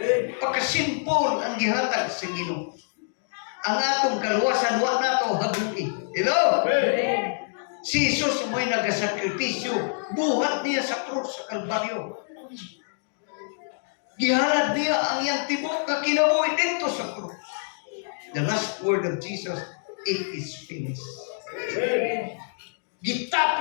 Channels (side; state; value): right; silent; digital silence